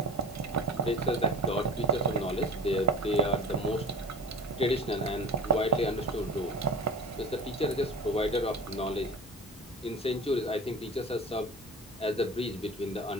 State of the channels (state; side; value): normal; both; correlation 0.34